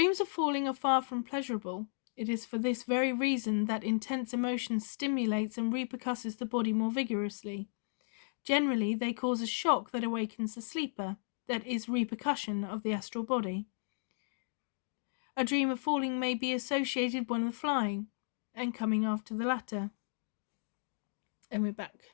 of falling are far from pleasurable. It is for this very reason that intense emotion stimulates and repercusses the body more vigorously. Generally, they cause a shock that awakens the sleeper, that is, repercussion of the astral body. A dream of falling may be associated with flying, and coming after the latter. And we're back.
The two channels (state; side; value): silent; right; digital silence